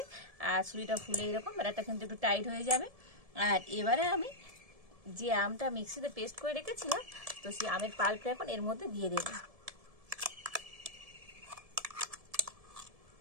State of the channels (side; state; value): left; late; 1.7 ms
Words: আর সুজিটা ফুলে এরকম ব্যাটারটা কিন্তু একটু টাইট হয়ে যাবে। আর এবারে আমি যে আমটা মিক্সিতে পেস্ট করে রেখেছিলাম, তো সেই আমের পাল্পটা এখন এর মধ্যে দিয়ে দেব।